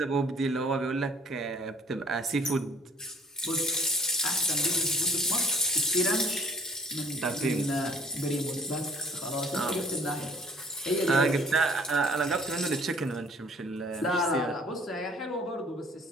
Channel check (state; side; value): normal; both; correlation 0.56